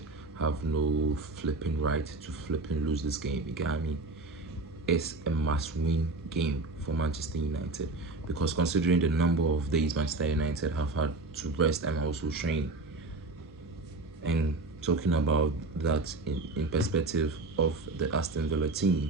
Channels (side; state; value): left; quieter; 3.3 dB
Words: have no flipping right to flipping lose this game. You get me? It's a must-win game for Manchester United, because considering the number of days Manchester United have had to rest and also train, and talking about that in perspective of the Aston Villa